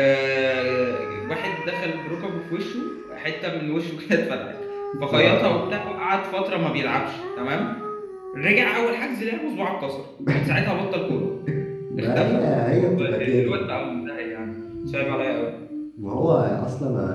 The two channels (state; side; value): identical; both; correlation 1.00